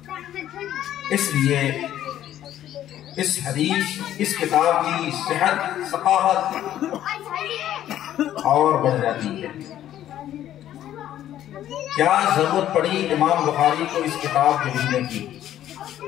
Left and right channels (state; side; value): quieter; right; 11.9 dB